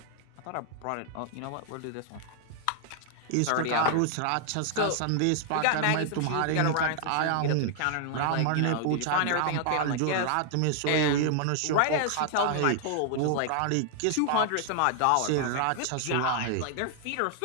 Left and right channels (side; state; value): both; different; correlation 0.00